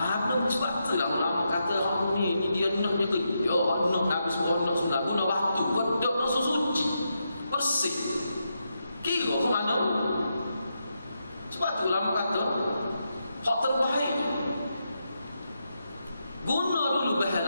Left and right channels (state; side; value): inverted; both; correlation -0.84